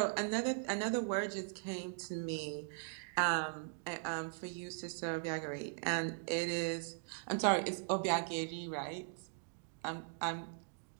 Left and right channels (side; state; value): left; silent; digital silence